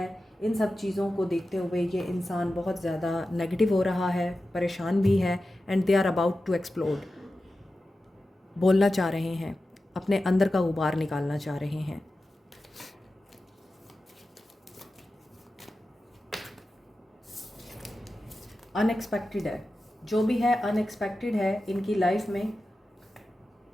इन सब चीज़ों को देखते हुए ये इंसान बहुत ज़्यादा नेगेटिव हो रहा है, परेशान भी है, and they are about to explode. बोलना चाह रहे हैं, अपने अंदर का गुबार निकालना चाह रहे हैं। अनएक्सपेक्टेड है, जो भी है अनएक्सपेक्टेड है। इनकी लाइफ में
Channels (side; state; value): both; normal; correlation 0.93